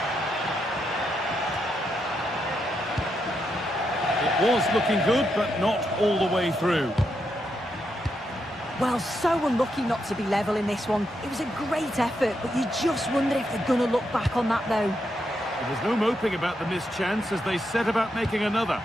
It was looking good, but not all the way through. Well, so unlucky not to be level in this one. It was a great effort, but you just wonder if they're going to look back on that, though. There was no moping about the missed chance as they set about making another.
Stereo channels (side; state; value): both; normal; correlation 0.82